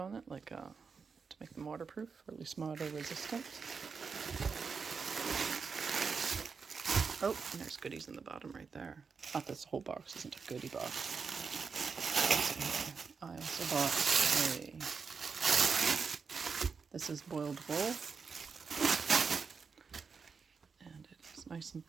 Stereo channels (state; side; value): quieter; left; 5.4 dB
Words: it, like to make them waterproof, or at least water resistant. Oh, and there's goodies in the bottom right there. Not this whole box isn't a goodie box. I also bought this is boiled wool, and it is nice and